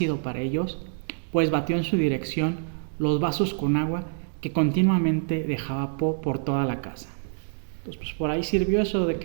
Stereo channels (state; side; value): silent; left; digital silence